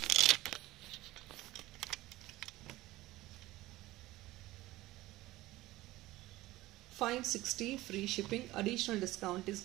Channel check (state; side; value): quieter; left; 17.7 dB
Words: $560 free shipping. Additional discount is